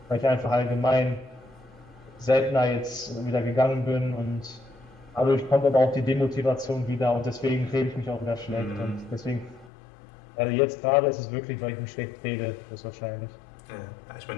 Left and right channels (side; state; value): right; drops out; at 9.7 s